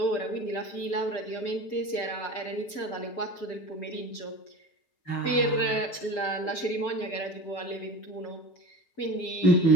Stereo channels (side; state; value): right; late; 5.9 ms